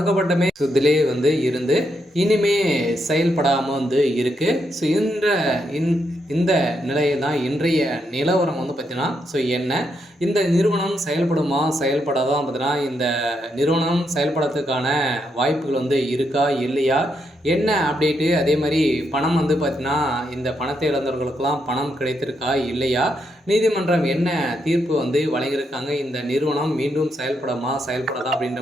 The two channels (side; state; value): both; normal; correlation 0.80